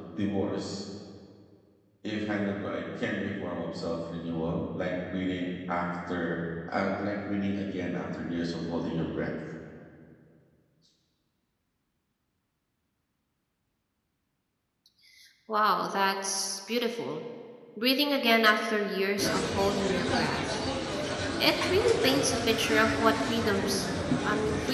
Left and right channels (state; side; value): identical; both; correlation 1.00